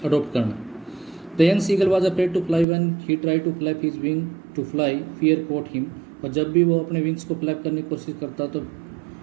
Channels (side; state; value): left; drops out; at 2.7 s